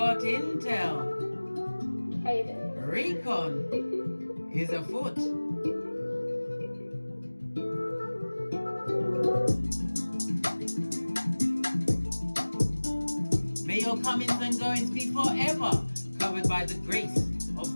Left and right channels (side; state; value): both; inverted; correlation -1.00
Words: intel. Recon is afoot. May your comings and goings be forever covered by the grace of